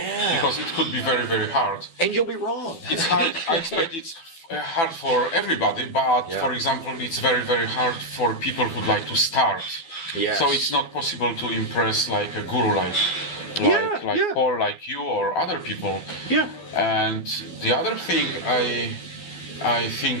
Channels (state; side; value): late; right; 12 ms